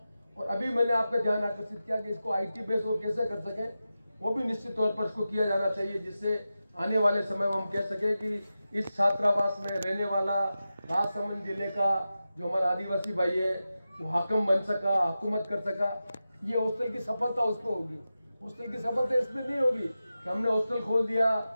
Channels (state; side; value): inverted; both; correlation -0.93